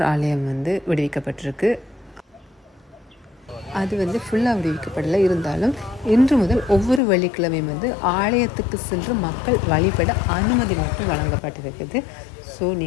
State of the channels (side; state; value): right; drops out; at 7.0 s